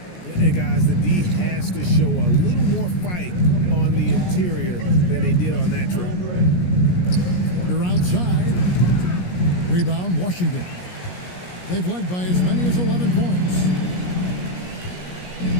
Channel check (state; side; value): late; right; 17 ms